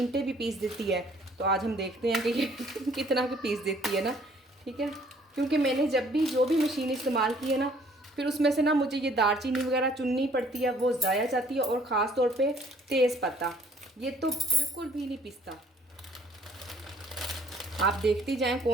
भी पीस देती है। तो आज हम देखते हैं कि ये कितना की पीस देती है ना, ठीक है। क्योंकि मैंने जब भी जो भी मशीन इस्तेमाल की है ना, फिर उसमें से ना मुझे ये दालचीनी वगैरह चुननी पड़ती है, वो ज़ाया जाती है। और ख़ास तौर पे तेज़ पत्ता, ये तो बिल्कुल भी नहीं पिसता। आप देखती जाएं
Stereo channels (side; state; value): both; normal; correlation 0.60